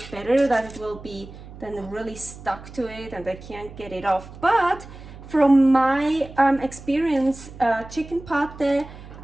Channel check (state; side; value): noise; right; hum, 16 dB below the sound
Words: better, that it will be then really stuck to it and I can't get it off. But from my experience, chicken pâté,